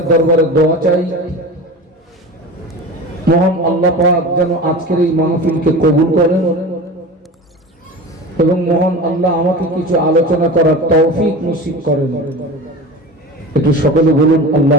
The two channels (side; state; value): both; normal; correlation 0.32